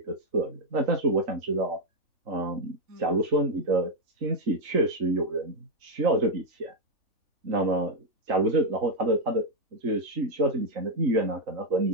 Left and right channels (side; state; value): left; late; 3.4 ms